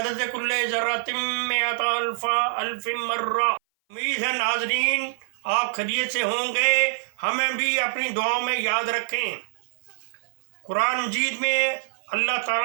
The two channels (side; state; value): left; silent; 58 dB below the other